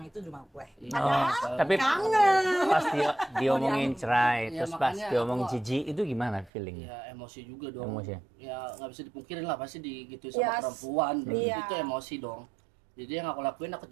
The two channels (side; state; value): left; drops out; at 6.5 s